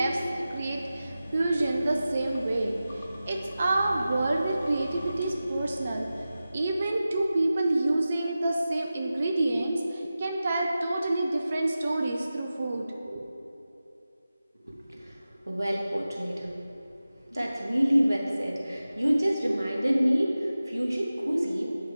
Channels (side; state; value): both; inverted; correlation -0.95